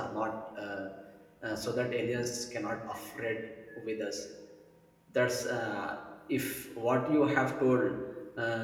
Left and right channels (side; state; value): both; identical; correlation 1.00